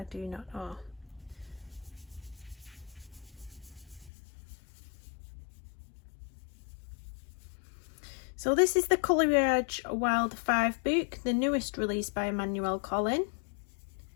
do not know. So this is the Coleridge Wild 5 book, the newest release by Emmanuel Collin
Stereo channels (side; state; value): right; drops out; at 4.1 s